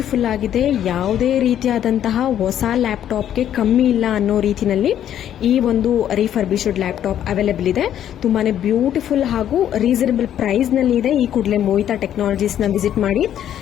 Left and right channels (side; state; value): right; quieter; 10.5 dB